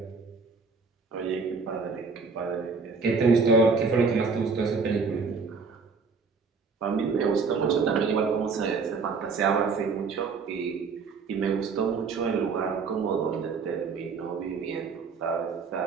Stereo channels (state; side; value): quieter; left; 4.9 dB